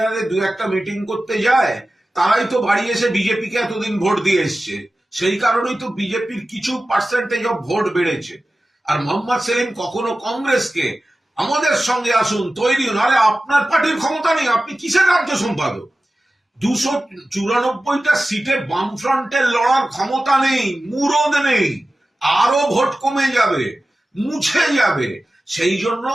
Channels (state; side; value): normal; both; correlation 0.95